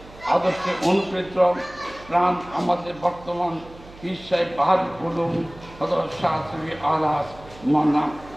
আদর্শে অনুপ্রেরিত প্রাণ আমাদের বর্তমান পীর সাহেব বাহাদুর উলুম হযরত শাহ সুফি আলহাজ মাওলানা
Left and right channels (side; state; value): right; noise; hum, 20 dB below the sound